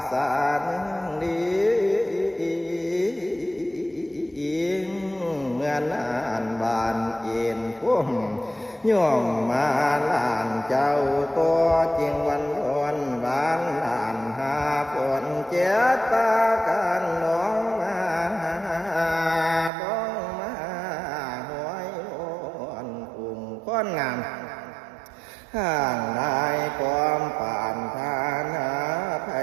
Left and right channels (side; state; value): left; drops out; at 19.7 s